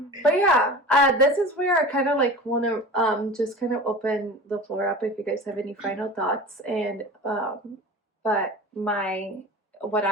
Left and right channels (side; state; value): both; normal; correlation 0.35